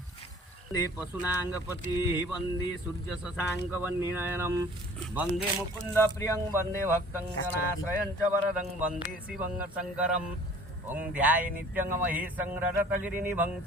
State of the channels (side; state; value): both; normal; correlation 0.50